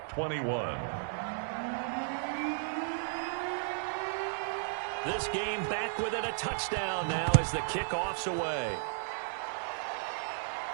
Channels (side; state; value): left; silent; digital silence